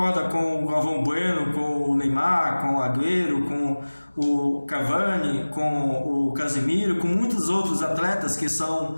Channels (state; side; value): inverted; both; correlation -1.00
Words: com o Galvão Bueno, com o Neymar, com o Agüero, com o Cavani, com o Casemiro, com muitos outros atletas que são